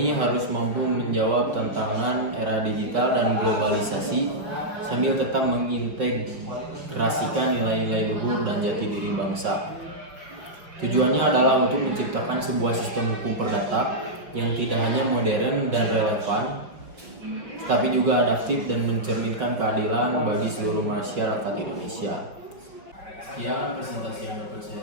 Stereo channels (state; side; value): late; left; 5.5 ms